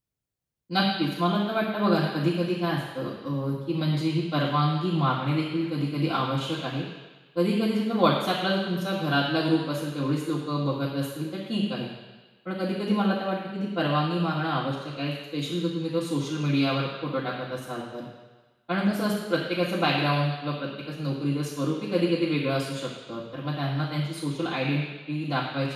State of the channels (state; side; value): identical; both; correlation 1.00